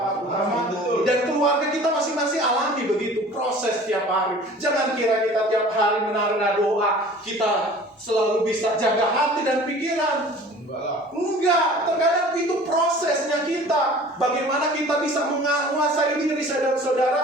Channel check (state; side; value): normal; both; correlation 0.45